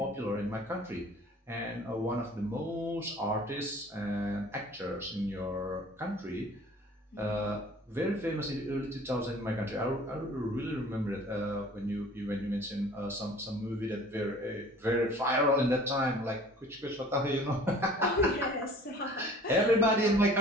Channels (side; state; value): both; normal; correlation 0.48